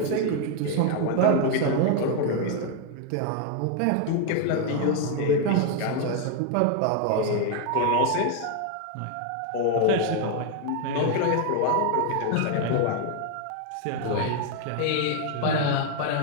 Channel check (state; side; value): different; both; correlation 0.00